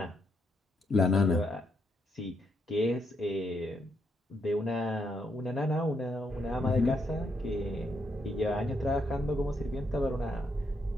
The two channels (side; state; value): both; normal; correlation 0.77